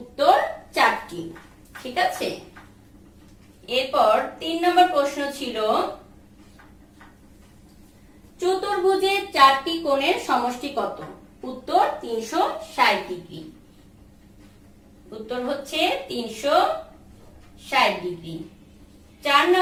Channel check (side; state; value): both; identical; correlation 1.00